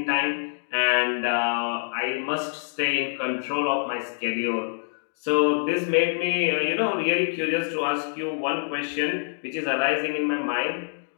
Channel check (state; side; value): silent; right; digital silence